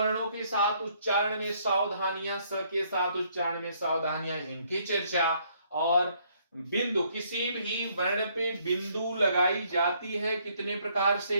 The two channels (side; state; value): both; inverted; correlation -0.67